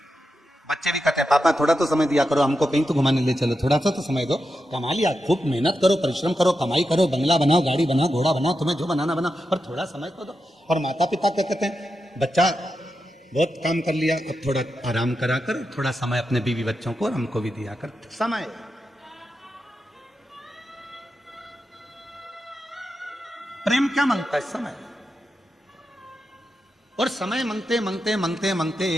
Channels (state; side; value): normal; both; correlation 0.88